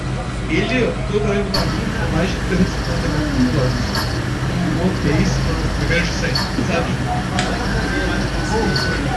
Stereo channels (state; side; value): identical; both; correlation 1.00